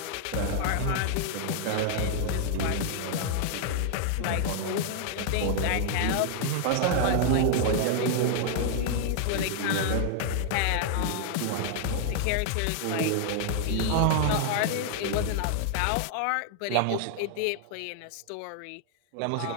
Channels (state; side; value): different; both; correlation 0.00